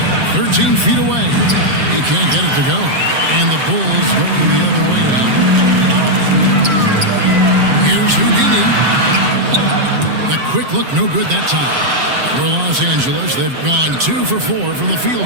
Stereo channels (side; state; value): left; late; 7.5 ms